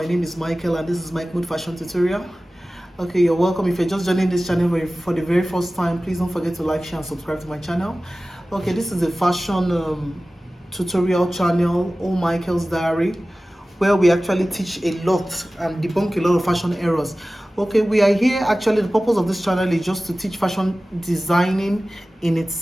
name is Michael and this is Mike Mood Fashion Tutorial. Okay, you're welcome. If you're just joining this channel for the very first time, please don't forget to like, share and subscribe to my channel. Okay, this is a fashion tutorial channel, All Michael's Diary, where we actually teach a lot and debunk a lot of fashion errors. Okay, we are here, actually the purpose of this channel is just to teach fashion designing in its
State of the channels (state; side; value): normal; both; correlation 0.97